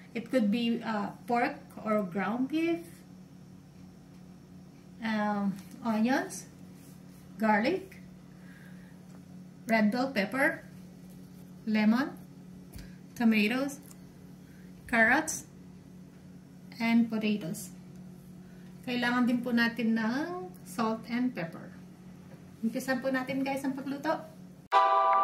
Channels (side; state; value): both; identical; correlation 1.00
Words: It could be pork or ground beef. Onions. Garlic. Red bell pepper. Lemon. Tomatoes. Carrots. And potatoes. Kailangan din po natin ng salt and pepper. Umpisan po natin guys ang pagluto.